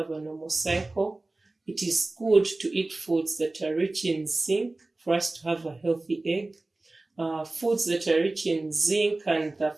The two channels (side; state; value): left; quieter; 3.0 dB